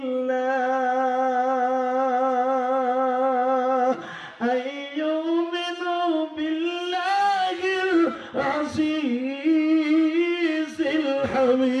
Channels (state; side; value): identical; both; correlation 1.00